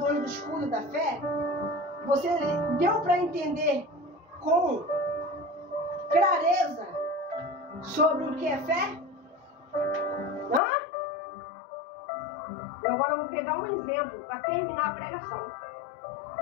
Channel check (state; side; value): drops out; right; at 10.6 s